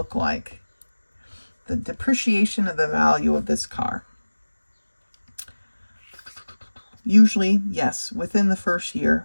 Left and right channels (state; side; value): inverted; both; correlation -1.00